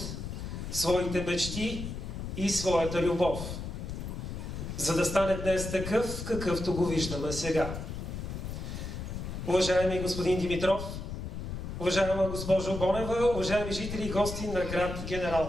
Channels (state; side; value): noise; left; rumble, 6 dB below the sound